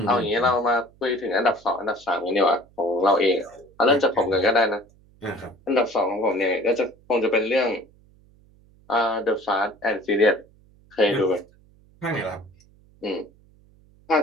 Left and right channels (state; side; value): noise; right; hum, 29 dB below the sound